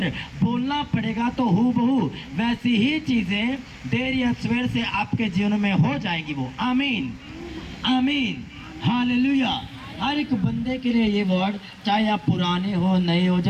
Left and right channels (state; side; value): identical; both; correlation 1.00